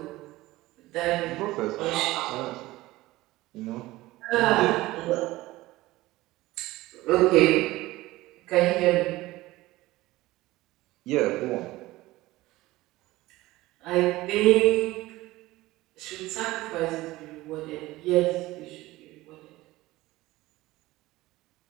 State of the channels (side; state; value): left; quieter; 18.3 dB